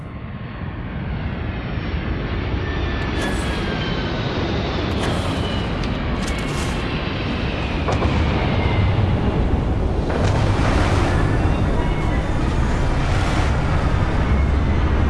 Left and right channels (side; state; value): both; identical; correlation 1.00